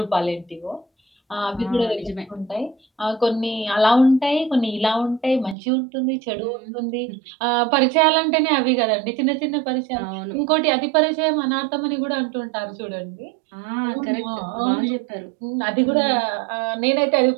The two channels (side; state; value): left; drops out; at 5.6 s